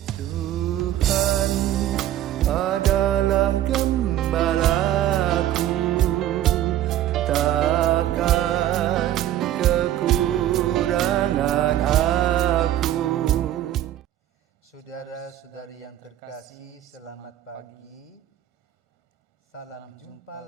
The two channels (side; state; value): left; quieter; 12.6 dB